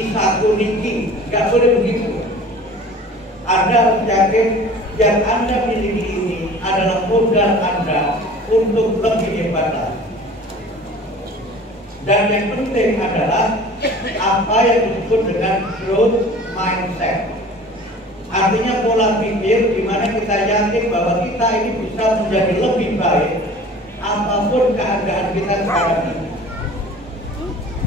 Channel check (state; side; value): normal; both; correlation 0.44